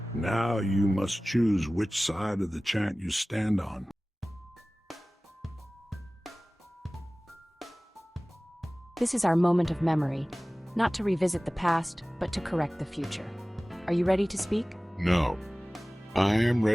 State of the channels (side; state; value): both; normal; correlation 0.98